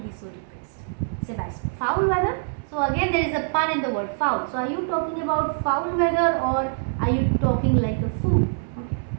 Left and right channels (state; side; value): silent; left; 62 dB below the other